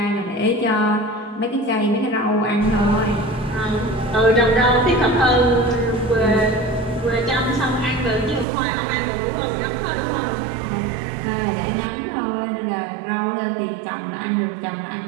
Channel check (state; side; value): drops out; left; at 8.5 s